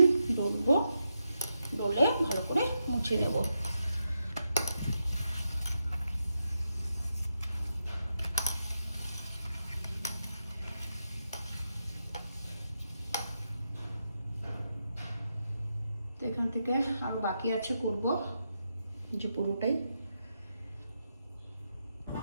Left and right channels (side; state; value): both; inverted; correlation -0.85